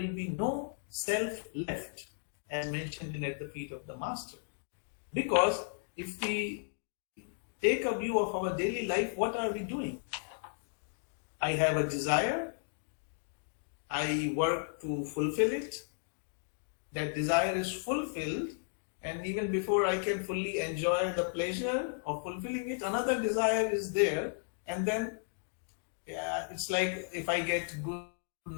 be no self left, as mentioned in At the Feet of the Master. Because if we take a view of our daily life, what are we doing? I have a desire, I work to fulfill it, that desire is fulfilled, and even before I can fully enjoy the pleasure of fulfilling it, another desire is there. And then it's like, if I get good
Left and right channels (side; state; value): right; silent; digital silence